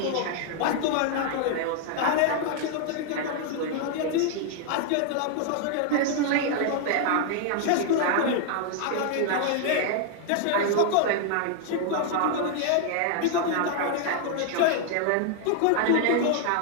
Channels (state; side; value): different; both; correlation 0.00